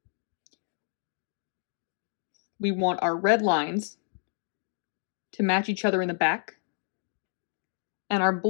we want our red lines to match each other in the back, and our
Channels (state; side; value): silent; right; digital silence